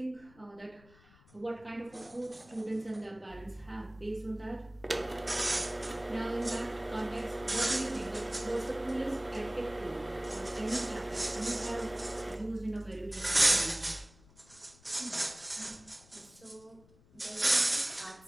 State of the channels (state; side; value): noise; left; rumble, 26 dB below the sound